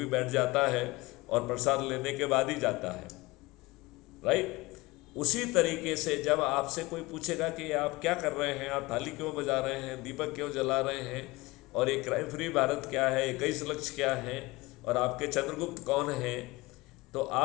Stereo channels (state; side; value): quieter; right; 22.0 dB